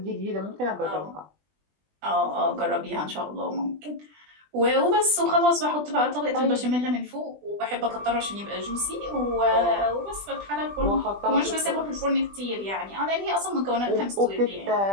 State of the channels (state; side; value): late; left; 20 ms